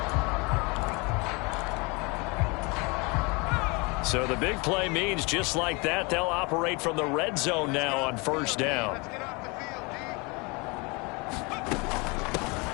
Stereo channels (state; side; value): quieter; right; 28.1 dB